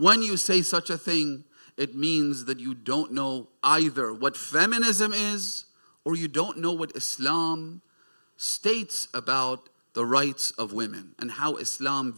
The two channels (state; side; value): inverted; both; correlation -1.00